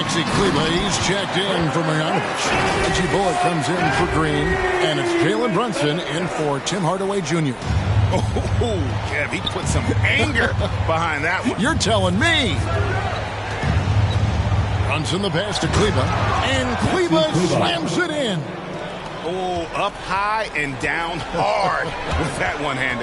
Kleber, he's checked in for Marjanovic. Reggie Bullock comes in for Green. And it's Jalen Brunson in for Tim Hardaway Jr. Oh, Kev, he put some anger behind that one. You're telling me. Brunson the pass to Kleber. And Kleber slams it in. Oh, up high and down hard with that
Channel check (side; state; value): both; identical; correlation 1.00